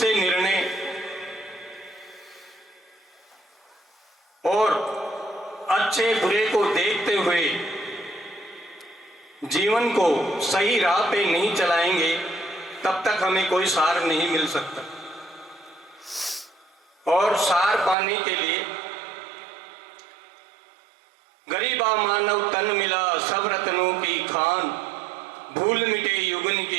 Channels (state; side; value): drops out; left; at 17.9 s